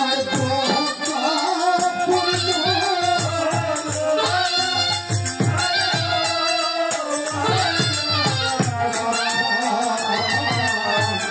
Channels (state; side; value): identical; both; correlation 1.00